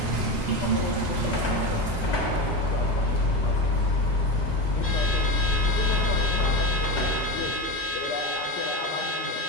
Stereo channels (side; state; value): both; normal; correlation 0.20